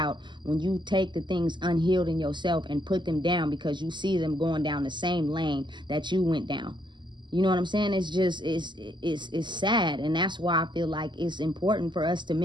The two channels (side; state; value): left; late; 0.22 ms